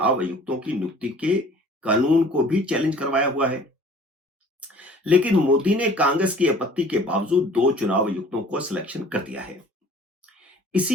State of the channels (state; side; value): normal; both; correlation 0.50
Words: आयुक्तों की नियुक्ति के कानून को भी चैलेंज करवाया हुआ है। लेकिन मोदी ने कांग्रेस की आपत्ति के बावजूद 2 चुनाव आयुक्तों को सिलेक्शन कर दिया है।